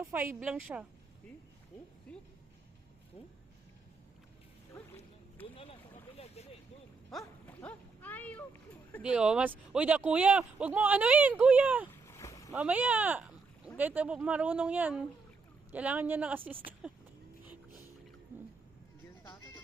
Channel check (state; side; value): quieter; left; 4.3 dB